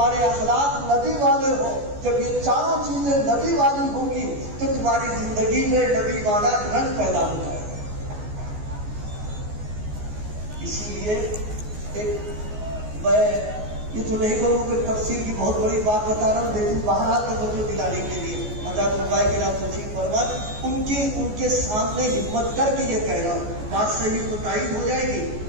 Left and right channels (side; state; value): left; late; 14 ms